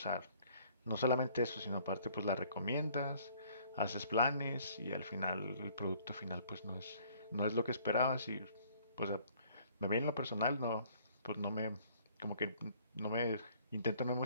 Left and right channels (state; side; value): inverted; both; correlation -0.58